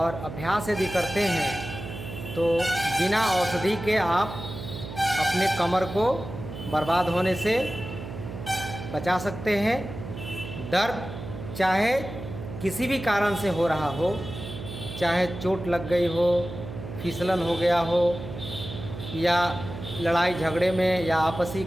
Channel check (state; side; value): noise; right; hum, 10 dB below the sound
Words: अभ्यास यदि करते हैं तो बिना औषधि के आप अपने कमर को बर्बाद होने से बचा सकते हैं। दर्द चाहे किसी भी कारण से हो रहा हो, चाहे चोट लग गई हो, फिसलन हो गया हो, या लड़ाई झगड़े में या आपसी